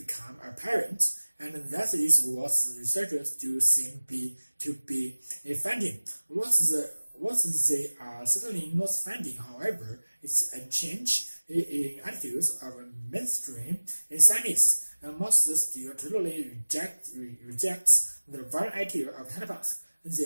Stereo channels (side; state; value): both; inverted; correlation -1.00